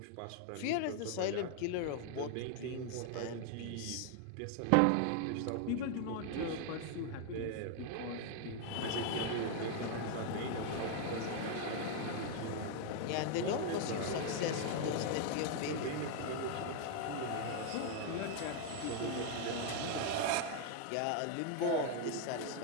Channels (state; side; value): different; both; correlation 0.00